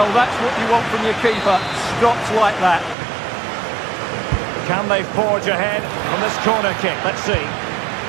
that's what you want from your keeper. Stops like that. Can they forge ahead from this corner kick? Let's see.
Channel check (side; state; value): left; drops out; at 3.0 s